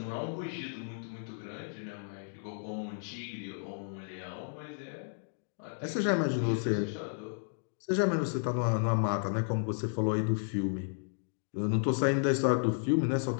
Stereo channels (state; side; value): silent; right; digital silence